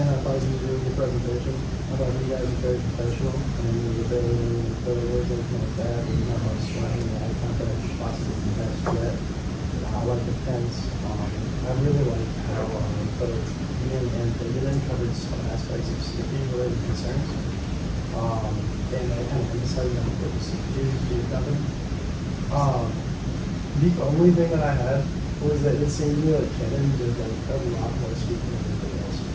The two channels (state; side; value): identical; both; correlation 1.00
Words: I thought you did a really good presentation. I thought you guys were very professional, and you were very words, everything like that. And you know how to explain the eye contact possibly the best yet. I like the fence. I really like how both Ian and David covered some aspects of safety related concerns. And I kind of emphasized on what the security is being covered. The only thing that I had was that it seemed to me like Canon did like a lot more speaking than anything else.